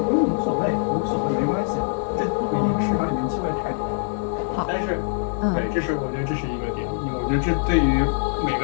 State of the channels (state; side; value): silent; right; digital silence